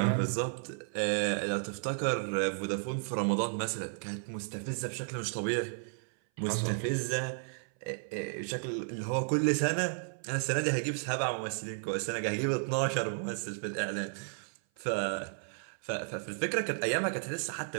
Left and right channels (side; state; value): left; silent; 55 dB below the other